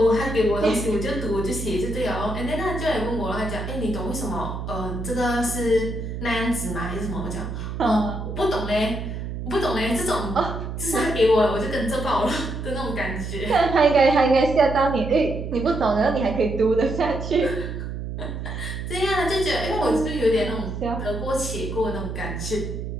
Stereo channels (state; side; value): noise; right; hum, 6 dB below the sound